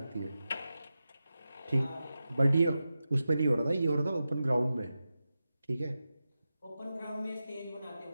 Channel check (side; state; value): both; inverted; correlation -0.92